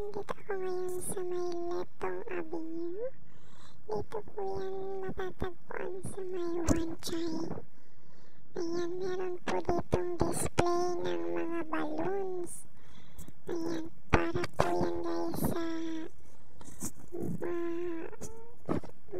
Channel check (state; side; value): identical; both; correlation 1.00